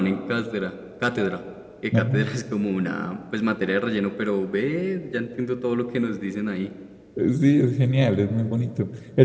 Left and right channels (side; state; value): both; identical; correlation 1.00